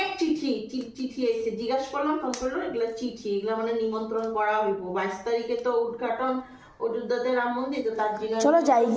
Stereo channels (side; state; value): both; identical; correlation 1.00